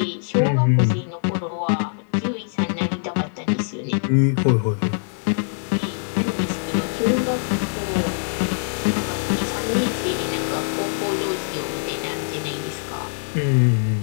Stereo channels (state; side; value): silent; right; 64 dB below the other